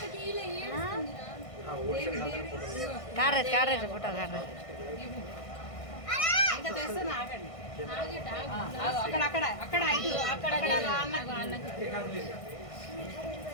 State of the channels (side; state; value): right; late; 1.6 ms